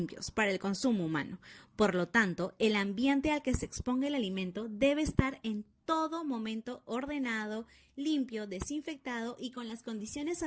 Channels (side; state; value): both; identical; correlation 1.00